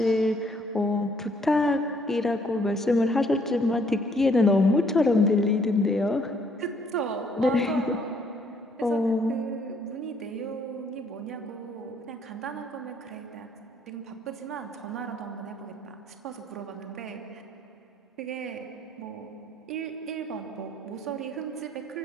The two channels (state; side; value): normal; both; correlation 0.65